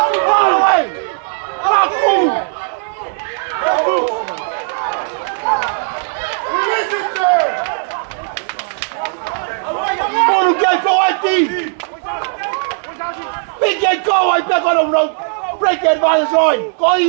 Big go, I back on the road. Break the advantage line. Go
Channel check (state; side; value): silent; left; digital silence